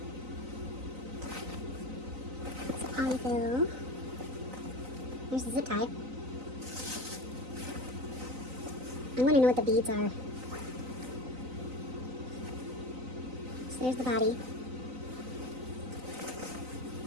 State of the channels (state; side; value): late; left; 3.9 ms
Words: So polyfill. There's the zip tie. I want to know what the beads are. So there's the body.